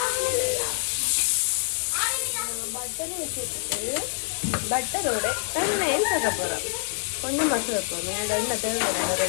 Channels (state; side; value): silent; right; digital silence